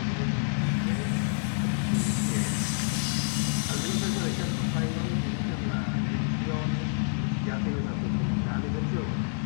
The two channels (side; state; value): right; silent; 59 dB below the other